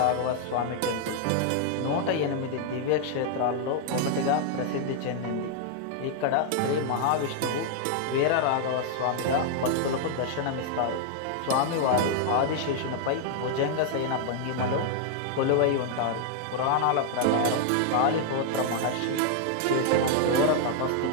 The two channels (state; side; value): different; both; correlation 0.00